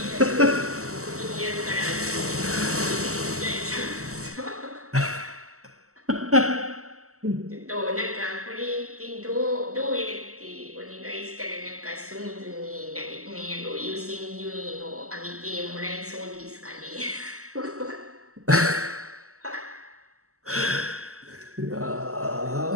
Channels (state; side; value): late; left; 0.64 ms